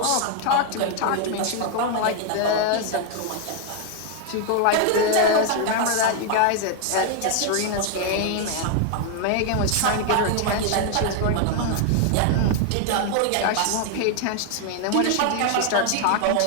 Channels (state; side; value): different; both; correlation 0.00